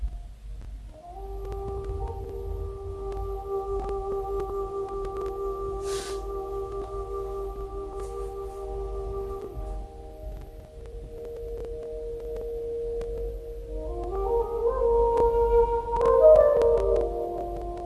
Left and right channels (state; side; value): identical; both; correlation 1.00